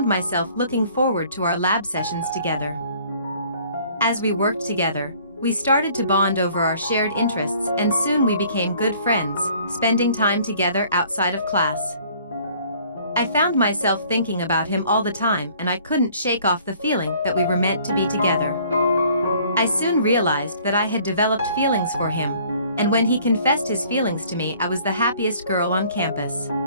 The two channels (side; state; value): both; inverted; correlation -0.56